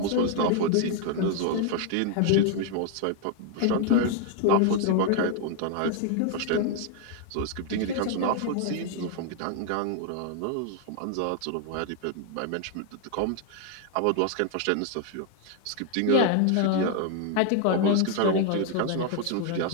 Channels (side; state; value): both; different; correlation 0.00